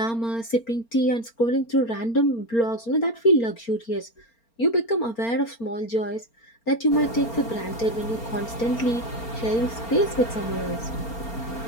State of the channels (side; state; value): right; late; 4.4 ms